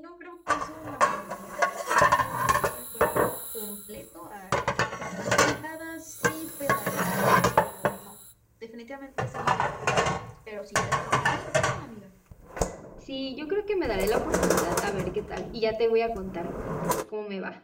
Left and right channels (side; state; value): both; identical; correlation 1.00